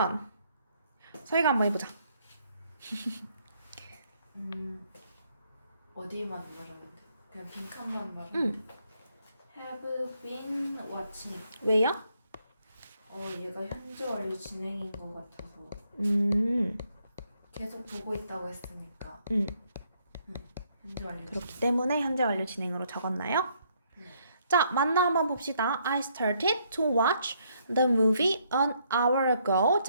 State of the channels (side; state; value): both; inverted; correlation -0.71